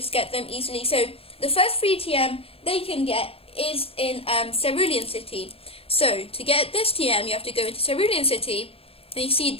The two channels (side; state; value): right; late; 0.28 ms